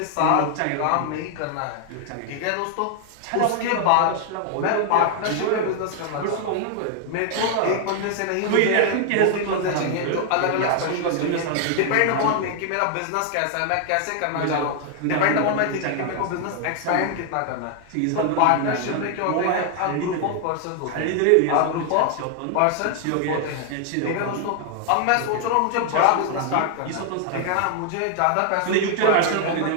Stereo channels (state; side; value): different; both; correlation 0.00